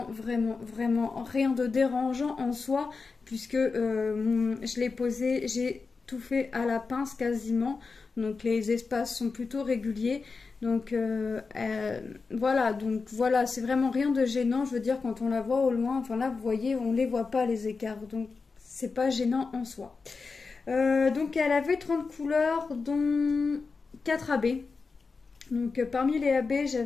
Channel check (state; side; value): quieter; right; 4.5 dB